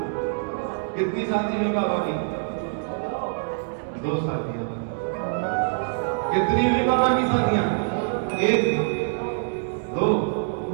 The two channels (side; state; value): left; silent; 62 dB below the other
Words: कितनी शादी हुई बाबा की? 2 शादियां। कितनी हुई बाबा की शादियां? 1 2।